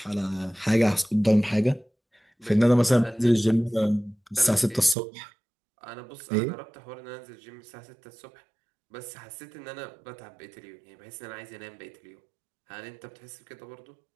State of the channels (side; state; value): left; drops out; at 5.0 s